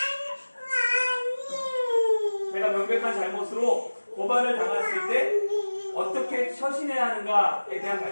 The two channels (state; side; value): inverted; both; correlation -1.00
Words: 내가 명백한 잘못으로 고발을 당했을 때 어떻게 처신해야 하는가에 대한